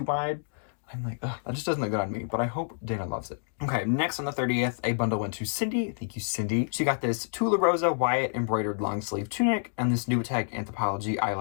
wide. I'm like, ugh, that just doesn't look good on me, but I hope Dana loves it. Okay, next on the 30th, a bundle went to Cindy. Thank you, Cindy. She got this Tula Rosa Wyatt embroidered long sleeve tunic and this Newiteg Anthropology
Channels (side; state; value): right; silent; digital silence